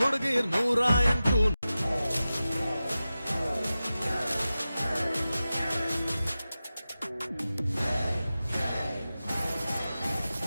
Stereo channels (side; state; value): both; inverted; correlation -0.94